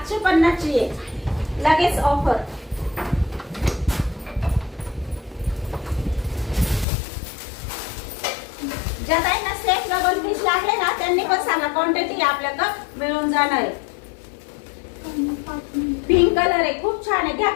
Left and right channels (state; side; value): drops out; right; at 6.9 s